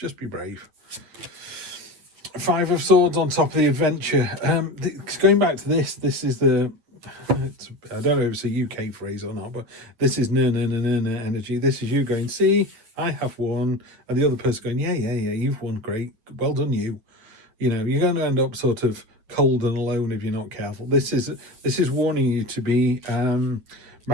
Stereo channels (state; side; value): late; left; 9.2 ms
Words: be brave. Five of Swords on top of the adventure. Going back to this is the, I don't know if it's a UK phrase or not, but this is no energy. This is you going, see, I have won, and the other person going, yeah, you've won, great, well done you. You know, you're going to end up sort of cold and alone if you're not careful. This is warning you to be